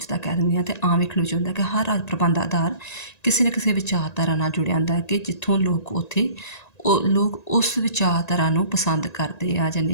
ਕਹਿ ਦਿੰਦੇ ਹਾਂ। ਅਤੇ ਆਮ ਵੇਖਣ ਵਿੱਚ ਹੁੰਦਾ ਕਿ ਹਰ ਰਾਜ ਪ੍ਰਬੰਧ ਦਾ ਆਧਾਰ ਕਿਸੇ ਨਾ ਕਿਸੇ ਵਿਚਾਰਧਾਰਾ ਨਾਲ ਜੁੜਿਆ ਹੁੰਦਾ ਹੈ, ਕਿ ਜਿੱਥੋਂ ਲੋਕ ਉਸ ਵਿਚਾਰਧਾਰਾ ਨੂੰ ਪਸੰਦ ਕਰਦੇ ਆ ਜਾਂ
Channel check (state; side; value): late; right; 1.9 ms